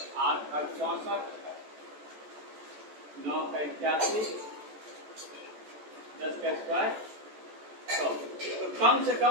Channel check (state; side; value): late; left; 14 ms